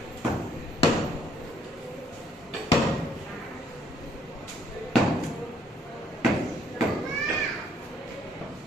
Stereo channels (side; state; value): both; normal; correlation 0.66